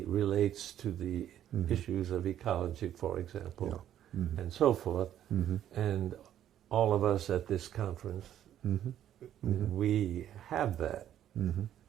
relates to the issues of ecology, for example, and so forth. And all of us at this conference, we have that.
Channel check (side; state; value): left; quieter; 11.1 dB